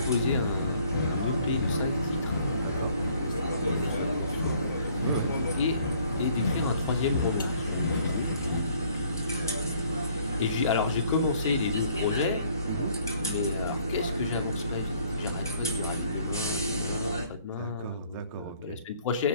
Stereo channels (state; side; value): inverted; both; correlation -0.61